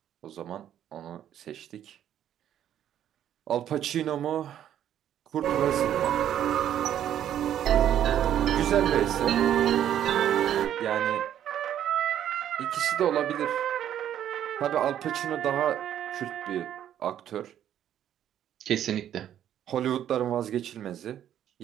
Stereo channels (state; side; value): quieter; left; 10.6 dB